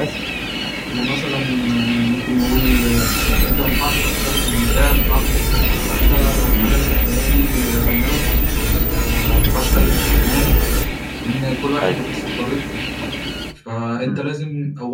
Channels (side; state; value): both; identical; correlation 1.00